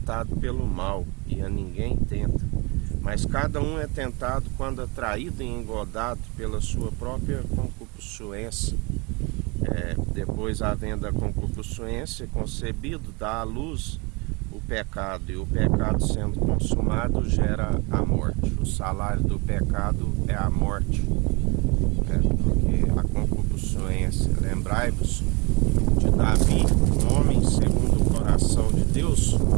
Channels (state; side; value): quieter; left; 28.6 dB